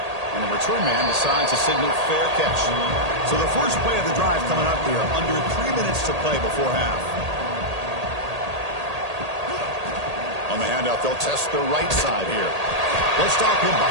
And the return man decides to signal fair catch. So the first play of the drive coming up here. Under 3 minutes to play before half. On the handout, they'll test the right side here. They'll stop him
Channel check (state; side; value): late; left; 1.8 ms